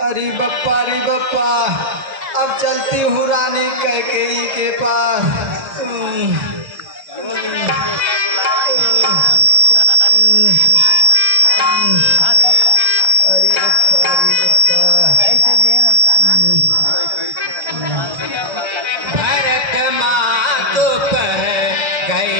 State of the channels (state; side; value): late; left; 1.3 ms